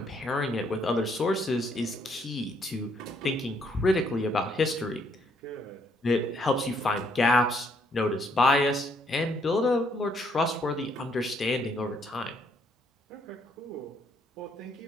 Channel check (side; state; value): both; normal; correlation 0.70